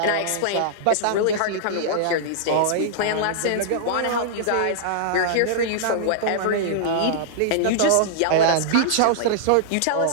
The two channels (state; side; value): different; both; correlation -0.02